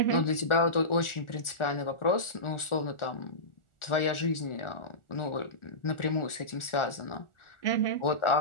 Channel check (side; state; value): right; late; 1.4 ms